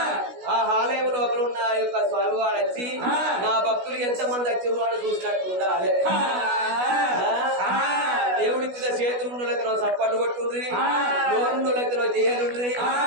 ఆ ఆలయం లోపల ఉన్న యొక్క స్వామివారు వచ్చి నా భక్తులు ఎంతమంది వచ్చారు అని చూసినట్టు ఉండాలి. దేవుడిచ్చిన చేతులున్నో సప్పట్టు కొట్టుండ్రి, నోరున్నోళ్ళకి చేయనుండ్రి.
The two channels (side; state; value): left; late; 16 ms